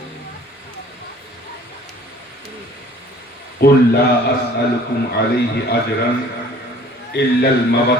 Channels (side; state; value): both; normal; correlation 0.52